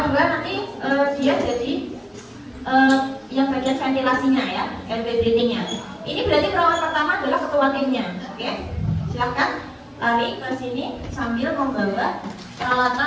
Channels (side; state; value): both; identical; correlation 1.00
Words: 2 nanti dia jadi yang bagian ventilasinya ya, airway breathingnya. Ini berarti perawat pertama adalah ketua timnya, oke? Silakan lari ke sini sambil membawa peralatan